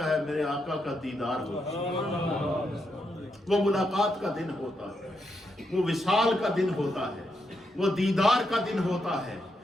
ہے؟ میرے آقا کا دیدار ہوتا ہے، وہ ملاقات کا دن ہوتا ہے، وہ وصال کا دن ہوتا ہے، وہ دیدار کا دن ہوتا ہے،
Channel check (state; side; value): normal; both; correlation 0.82